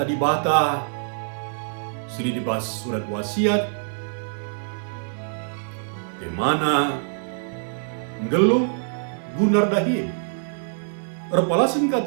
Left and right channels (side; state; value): left; silent; 58 dB below the other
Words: di bata sili dibahas surat wasiat, di mana ngeluh gunar dahim. Erpalasin